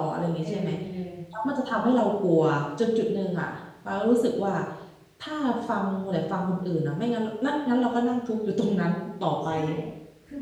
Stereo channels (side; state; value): both; identical; correlation 1.00